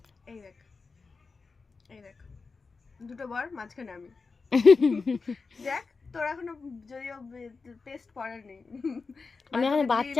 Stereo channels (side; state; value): right; quieter; 4.5 dB